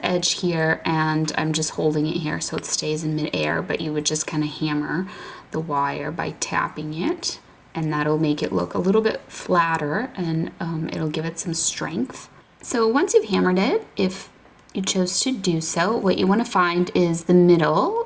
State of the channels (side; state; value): both; identical; correlation 1.00